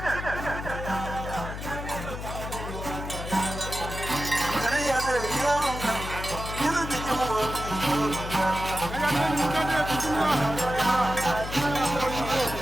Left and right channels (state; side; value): noise; left; hum, 7 dB below the sound